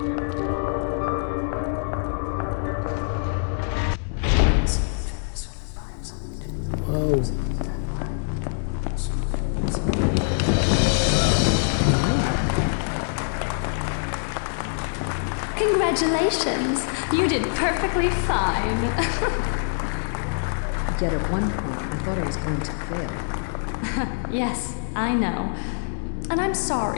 Whoa. Congratulations! You did perfectly fine. Yet at one point, I thought I was going to fail. Yes, I know. And I'm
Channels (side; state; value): right; silent; digital silence